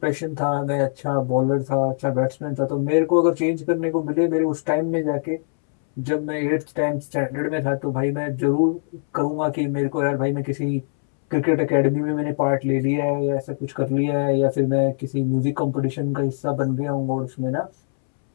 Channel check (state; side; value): silent; right; 64 dB below the other